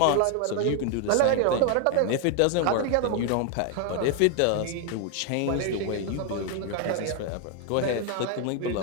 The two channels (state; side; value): different; both; correlation 0.01